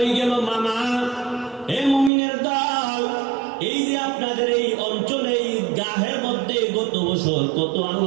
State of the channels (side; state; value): left; drops out; at 2.1 s